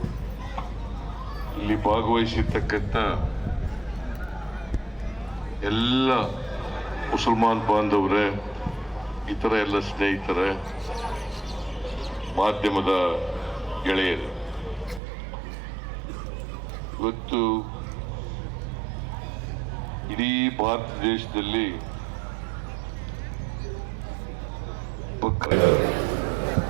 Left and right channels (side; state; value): left; drops out; at 15.0 s